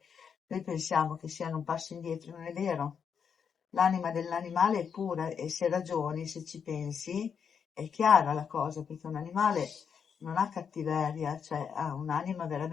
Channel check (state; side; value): quieter; right; 6.9 dB